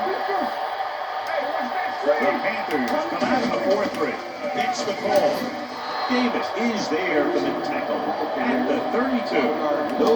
The Panthers come out in a 4-3. Gets the call. Davis is there for the tackle at the 32.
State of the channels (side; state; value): both; identical; correlation 1.00